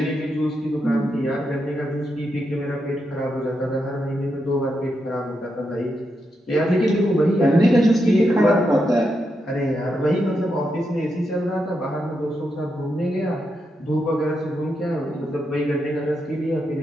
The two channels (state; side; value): normal; both; correlation 0.84